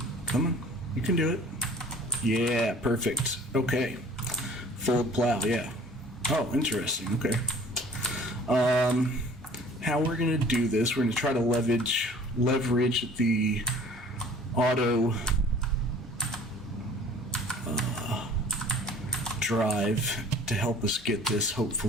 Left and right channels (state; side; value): normal; both; correlation 0.50